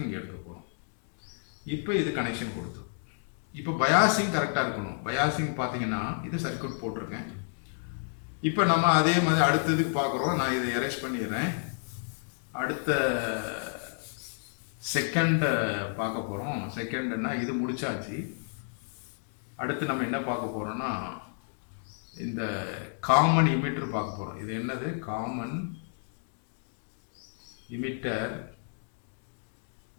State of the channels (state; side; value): silent; right; digital silence